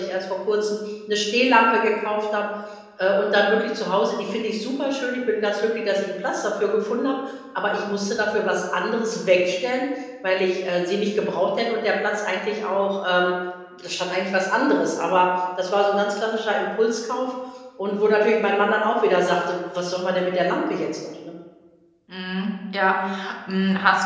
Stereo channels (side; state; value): both; identical; correlation 1.00